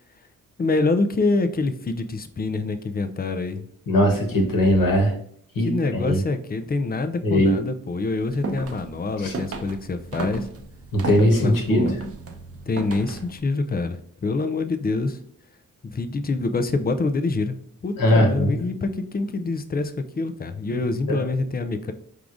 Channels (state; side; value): normal; both; correlation 0.65